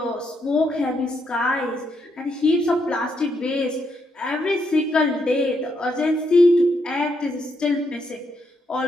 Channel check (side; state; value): both; normal; correlation 0.78